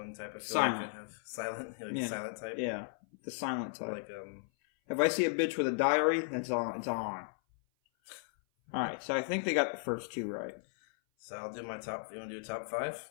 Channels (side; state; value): right; silent; 54 dB below the other